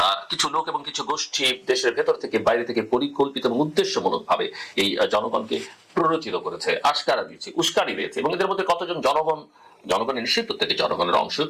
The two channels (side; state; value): both; identical; correlation 1.00